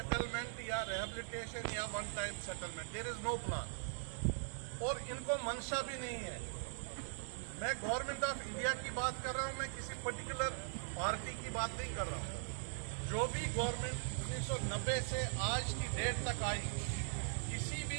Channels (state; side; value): silent; left; 50 dB below the other